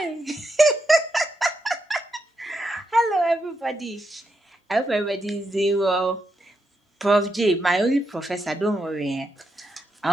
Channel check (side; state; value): both; normal; correlation 0.83